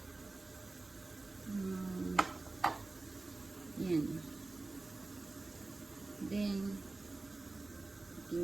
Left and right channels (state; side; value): quieter; left; 3.3 dB